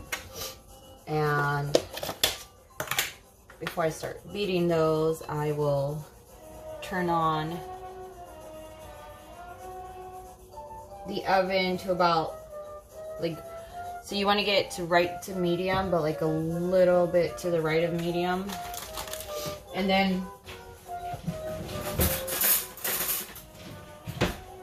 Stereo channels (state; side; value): identical; both; correlation 1.00